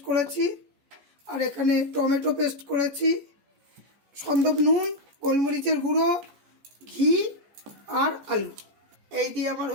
করেছি, আর এখানে টমেটো পেস্ট করেছি, সন্দব নুন, গোলমরিচের গুঁড়ো, ঘি আর আলু, এই দিয়ে আমার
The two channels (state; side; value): late; left; 14 ms